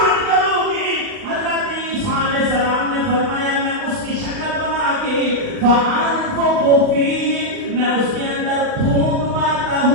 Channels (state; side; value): late; left; 39 ms